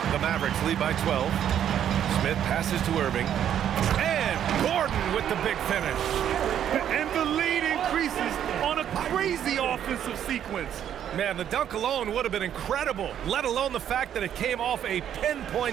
The Mavericks lead by 12. Smith passes to Irving. And Gordon with the big finish. And the lead increases on a crazy offensive sequence. Man, the dunk alone would have been incredible, let alone the fact that it came off a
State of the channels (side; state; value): left; quieter; 9.9 dB